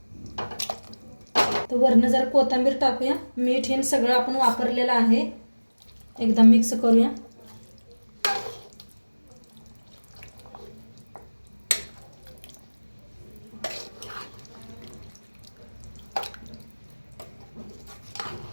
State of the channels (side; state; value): both; inverted; correlation -1.00